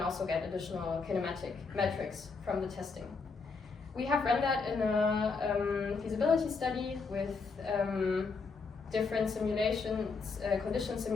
also get additional kinematic metrics from the testing. We have run that in a feasibility study with different simulations, conditions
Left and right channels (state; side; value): quieter; right; 4.6 dB